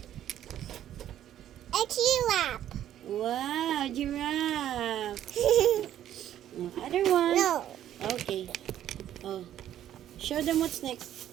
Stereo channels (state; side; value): quieter; left; 11.4 dB